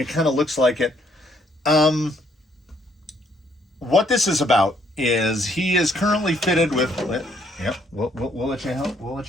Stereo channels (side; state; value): both; normal; correlation 0.68